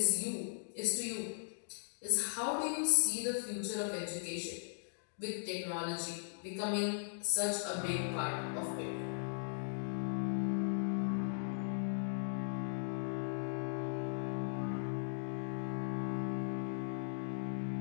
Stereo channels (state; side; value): silent; right; digital silence